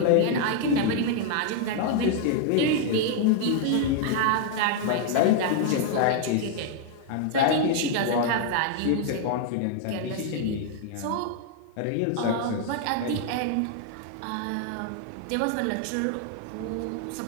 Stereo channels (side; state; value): both; different; correlation 0.00